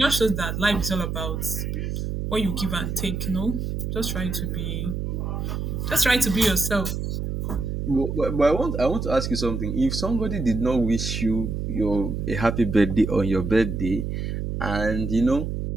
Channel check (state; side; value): noise; right; hum, 3 dB below the sound